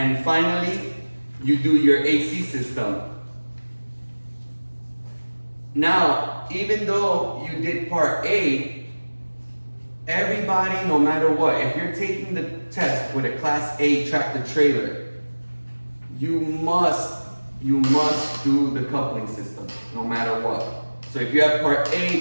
finally, you do your AC system. Now, even though you did part A, everybody, no matter what, if you're taking the test with a Class A tractor trailer, you must do the coupling system, no matter what. So if you have part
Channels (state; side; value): inverted; both; correlation -1.00